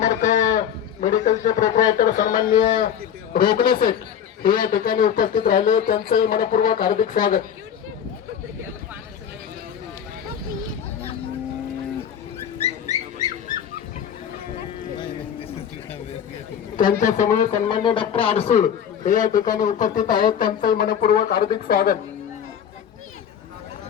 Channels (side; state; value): right; quieter; 8.8 dB